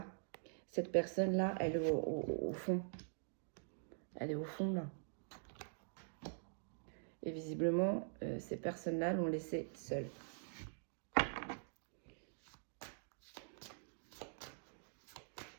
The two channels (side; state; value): left; silent; digital silence